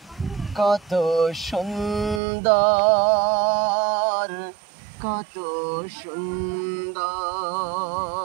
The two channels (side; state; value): left; drops out; at 2.2 s